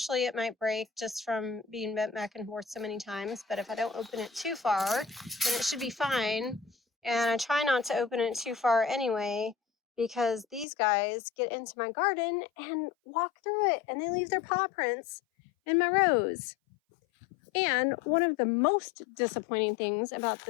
it might break just from being bent back and forth so many times, but if I don't open it too far, then it should be fine. And I try not to open it too far anyway, because these guys get into my garden and walk through it, and they leave their paw prints in my rows. And one of the most disappointing things about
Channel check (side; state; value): right; drops out; at 10.7 s